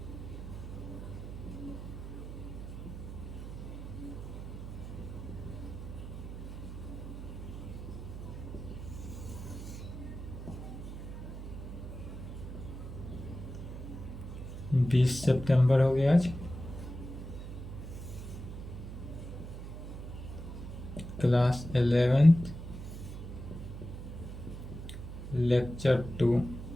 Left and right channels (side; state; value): right; noise; hum, 9 dB below the sound